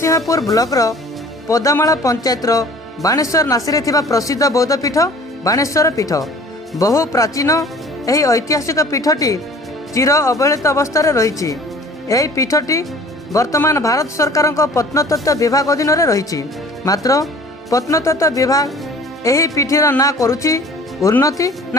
ब्लॉकर पदामाला पंचायतर बाणेश्वर नासी थिबा प्रसिद्ध बौद्ध पीठ बाणेश्वर पीठ। बहु प्राचीन यही ऐतिहासिक पीठटी चिर अवहेलित अवस्था रही। यही पीठटी वर्तमान भारत सरकार प्रत्नतत्व विभाग अधीन रही। मात्र प्रत्नतत्व विभाग यही पीठर ना करुछि उन्नति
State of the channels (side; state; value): both; normal; correlation 0.48